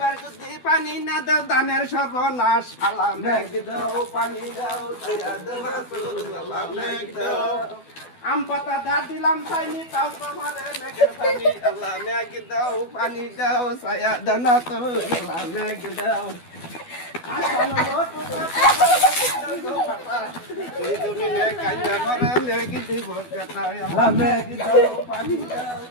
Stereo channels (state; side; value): late; right; 12 ms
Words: যদি পানি না দাও ধানের সর্বনাশ আল্লাহ মেঘ দাও পানি দাও ছায়া দাও রাসূল আল্লাহ মেঘ দাও আম পাতা দা দিলাম চাইনি তাও তোমারে মেঘের পানি আল্লাহ মেঘ দাও পানি দাও ছায়া দাও রাসূল আল্লাহ মেঘ দাও আসানো লোট এই দুনিয়া কাইয়া মরে মেঘ দিব কথা আল্লাহ মেঘ দাও পানি দাও